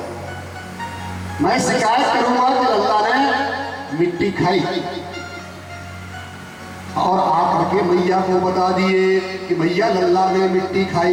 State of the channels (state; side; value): identical; both; correlation 1.00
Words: मैं शिकायत करूंगा कि लल्ला ने मिट्टी खाई। और आकर के मैया को बता दिए कि मैया लल्ला ने मिट्टी